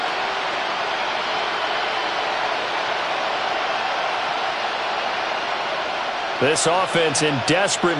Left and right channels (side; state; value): both; identical; correlation 1.00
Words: This offense in